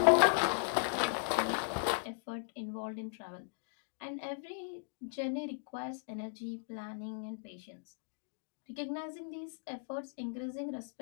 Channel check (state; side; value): silent; right; digital silence